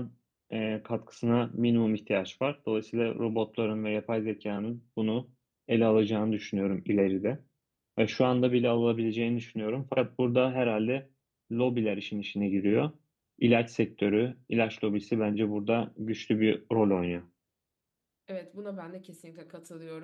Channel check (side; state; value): both; identical; correlation 1.00